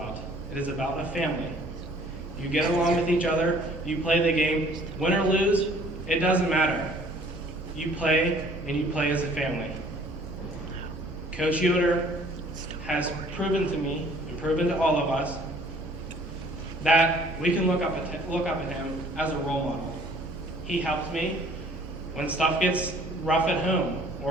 It is about a family. You get along with each other. You play the game. Win or lose, it doesn't matter. You play, and you play as a family. Coach Yoder has proven to me, and proven to all of us, that we can look up at him as a role model. He helps me when stuff gets rough at home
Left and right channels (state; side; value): normal; both; correlation 0.55